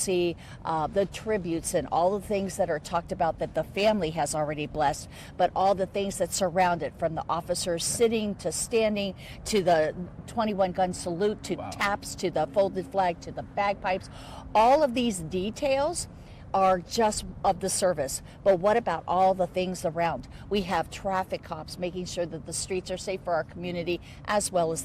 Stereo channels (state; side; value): identical; both; correlation 1.00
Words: the tributes and all the things that are talked about that the family has already blessed, but all the things that surround it, from the officers sitting to standing to the 21 gun salute to taps to the folded flag to the bagpipes. All of these details are just of the service, but what about all the things around? We have traffic cops making sure that the streets are safe for our community as well as